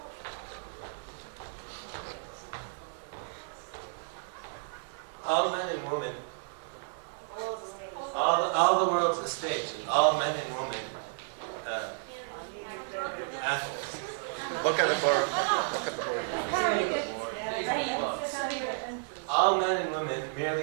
All men and women, all the world's a stage, and all men and women, athletes. Look at the board. Look at the board. All men and women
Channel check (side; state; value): left; silent; digital silence